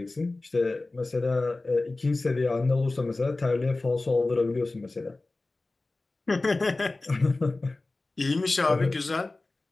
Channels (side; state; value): right; quieter; 3.2 dB